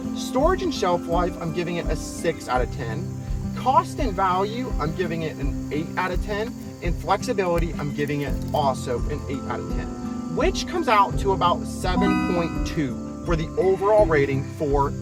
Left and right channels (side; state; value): both; identical; correlation 1.00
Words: Storage and shelf life, I'm giving it a 6 out of 10. Cost and value, I'm giving it an 8 out of 10. And flexibility, I'm giving it also an 8 out of 10, which comes out to about 7.2 for the overall rating for